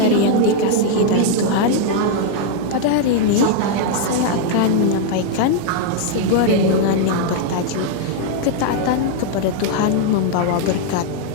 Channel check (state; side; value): different; both; correlation 0.00